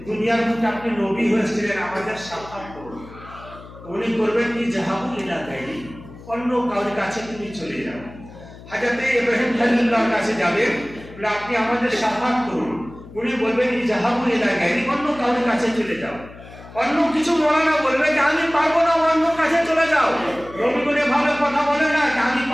দুনিয়ার বুকে আপনি নবী হয়েছিলেন, আমাদের সাক্ষাৎ করুন। উনি করবেন কি, জাহাবু ইলা গায়রি, অন্য কারোর কাছে তুমি চলে যাও। হযরত ইব্রাহিম খলিলুল্লাহর কাছে যাবেন, বলে আপনি আমাদের সাক্ষাৎ করুন। উনি বলবেন জাহাবু ইলা গায়রি, অন্য কারোর কাছে চলে যাও। অন্য কিছু মৌলানা বলবে যে আমি পারবো না, অন্য কাছে চলে যাও। নবীগুলো ভাবে কথা বলে না, আমি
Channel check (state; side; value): noise; left; hum, 18 dB below the sound